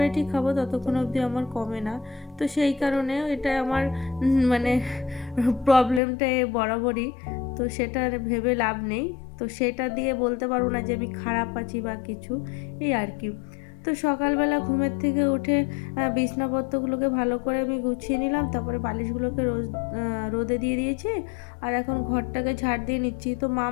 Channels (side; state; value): right; drops out; at 6.0 s